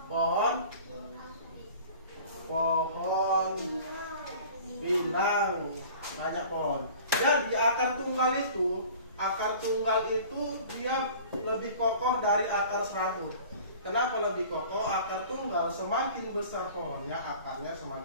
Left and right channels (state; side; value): inverted; both; correlation -0.44